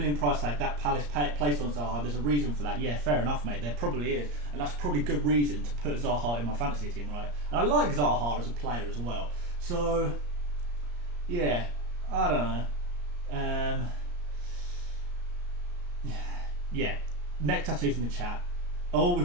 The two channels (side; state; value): left; late; 34 ms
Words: price tag that Palace placed on Zaha. There's a reason for that. Yeah, fair enough, mate. There probably is, and that's probably good reason to put Zaha in my fantasy team, right? And I like Zaha as a player as well. So, yeah, I don't know. Yeah, neck tattoos in the chat. Oh,